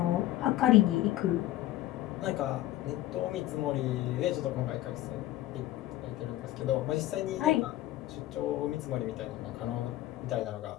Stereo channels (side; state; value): right; quieter; 15.1 dB